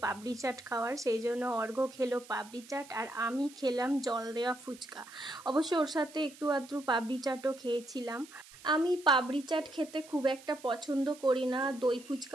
পাপড়ি চাট খাওয়ার, সেই জন্য অর্ঘ্য খেলো পাপড়ি চাট আর আমি খেলাম জল দেওয়া ফুচকা। অবশ্য ওর সাথে একটু আধটু পাপড়ি চাটও খেয়েছিলাম। আমি পাপড়ি চাট খেতে খুব একটা পছন্দ করি না, দই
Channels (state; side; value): noise; right; hiss, 20 dB below the sound